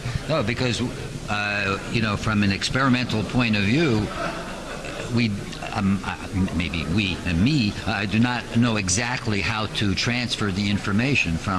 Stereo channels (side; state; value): both; identical; correlation 1.00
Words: No, because from an experimental point of view, we I do not know exactly how to transfer the information